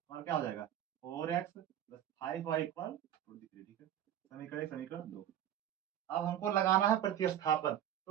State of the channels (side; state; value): left; quieter; 11.0 dB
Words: हमारा क्या हो जाएगा 4x प्लस 5y इक्वल 23, ठीक है। समीकरण 2। अब हमको लगाना है प्रतिस्थापन,